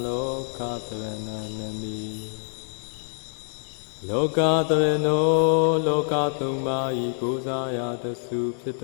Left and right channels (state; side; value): silent; right; digital silence